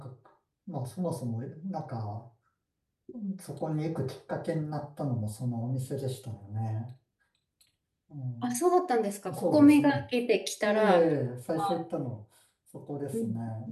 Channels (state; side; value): identical; both; correlation 1.00